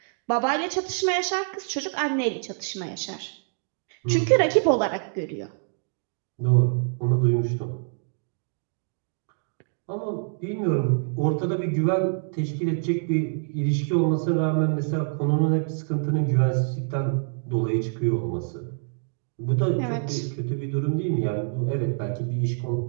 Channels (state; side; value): silent; left; digital silence